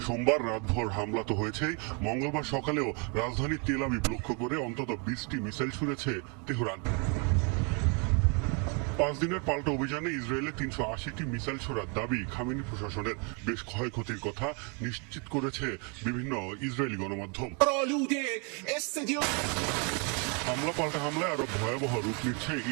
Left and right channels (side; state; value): left; quieter; 34.7 dB